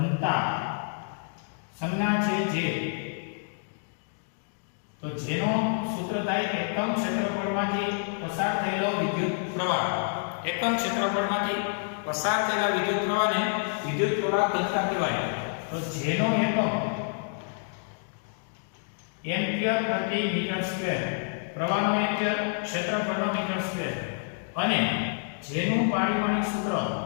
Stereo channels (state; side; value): silent; right; digital silence